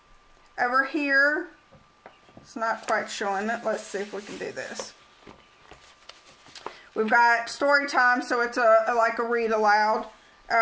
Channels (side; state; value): both; identical; correlation 1.00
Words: Over here, it's not quite showing it, let's see if we can do this. We've got story time, so it's like a read aloud.